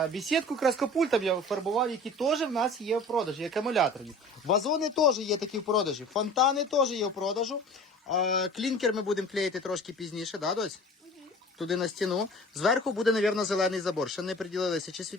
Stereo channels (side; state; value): both; normal; correlation 0.42